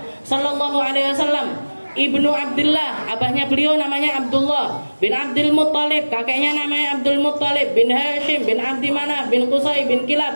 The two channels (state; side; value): inverted; both; correlation -1.00